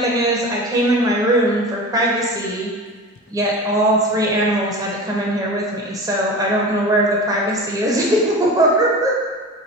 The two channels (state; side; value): normal; both; correlation 0.32